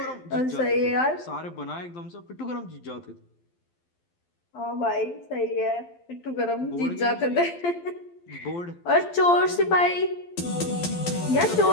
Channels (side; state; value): right; late; 12 ms